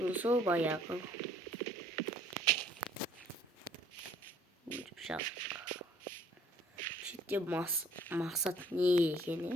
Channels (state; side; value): normal; both; correlation 0.58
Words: Uzun bayağı Şimdi maksat ne